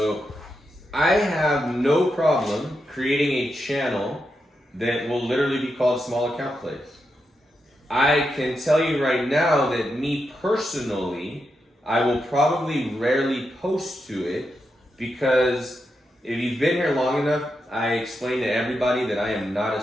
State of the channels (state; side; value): normal; both; correlation 0.86